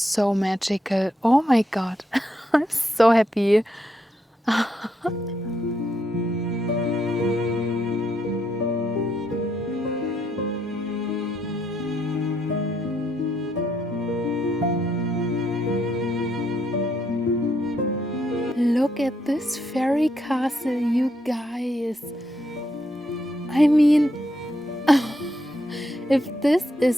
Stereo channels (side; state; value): both; normal; correlation 0.77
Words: magical. Oh my god, I'm so happy. Look at this fairy castle, you guys. I mean, if this